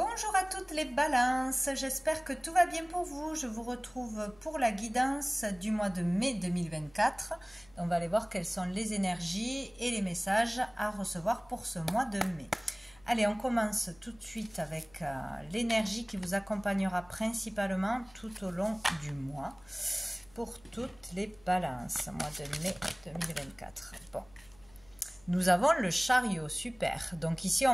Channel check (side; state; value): left; noise; hum, 27 dB below the sound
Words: à toutes les balances, j'espère que tout va bien pour vous. Je vous retrouve pour la guidance du mois de mai 2024. On va aller voir quelles sont les énergies et les messages à recevoir pour ce mois de mai. Allez, on commence tout de suite avec l'énergie qui vous accompagnera principalement tout au long du mois pour toutes les balances, mois de mai 2024. Bon, nous avons le chariot, super. Donc ici